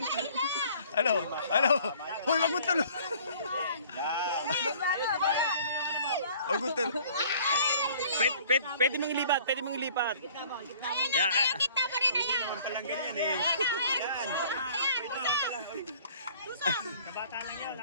Ano? Ano? Hoy, wag mo tulog. Wag mo tulog. Pwede mong ilipat, pwede mong ilipat. Ayan, ayan, kita mo rin, ayan. Naman palang ganyan eh. Ayan, ayan, usap. Kabata lang yun,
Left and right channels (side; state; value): both; inverted; correlation -0.53